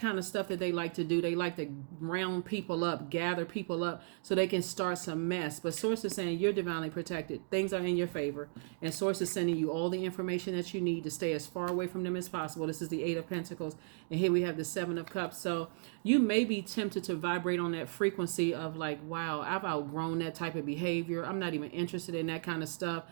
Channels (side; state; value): left; silent; digital silence